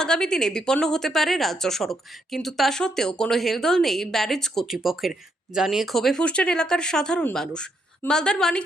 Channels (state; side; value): normal; both; correlation 0.76